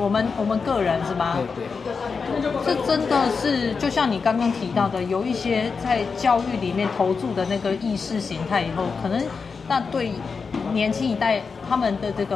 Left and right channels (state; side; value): quieter; right; 5.1 dB